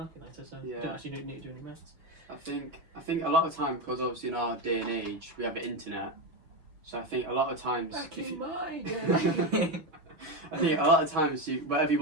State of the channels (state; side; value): late; left; 6.1 ms